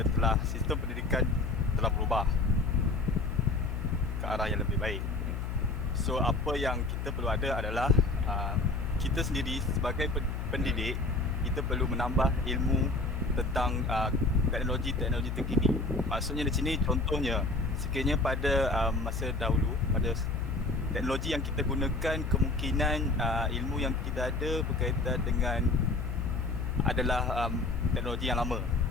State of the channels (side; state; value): left; noise; hum, 4 dB below the sound